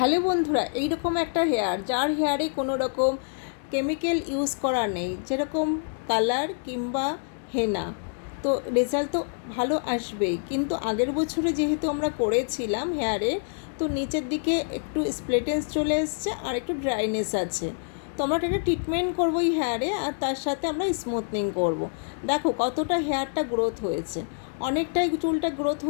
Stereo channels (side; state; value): right; silent; digital silence